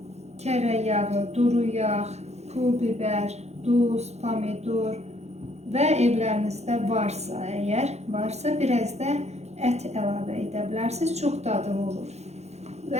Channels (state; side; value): late; left; 0.32 ms